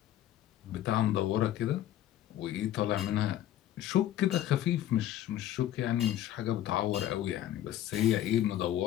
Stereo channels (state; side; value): quieter; right; 12.4 dB